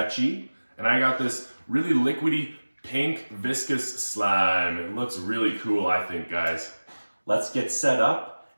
and I got this really liquidy pink viscous slime. It looks really cool, I think, guys. Let's get set up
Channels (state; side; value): inverted; both; correlation -1.00